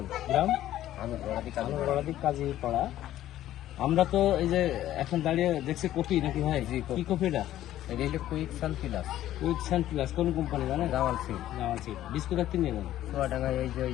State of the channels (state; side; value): quieter; right; 13.2 dB